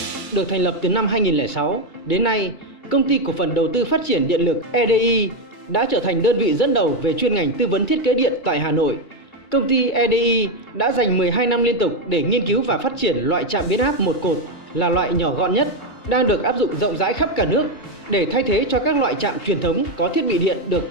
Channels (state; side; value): late; right; 2.3 ms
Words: được thành lập từ năm 2006, đến nay, Công ty Cổ phần Đầu tư Phát triển Điện lực EDI đã trở thành đơn vị dẫn đầu về chuyên ngành tư vấn thiết kế điện tại Hà Nội. Công ty EDI đã dành 12 năm liên tục để nghiên cứu và phát triển loại trạm biến áp một cột là loại nhỏ gọn nhất, đang được áp dụng rộng rãi khắp cả nước để thay thế cho các loại trạm truyền thống có thiết bị điện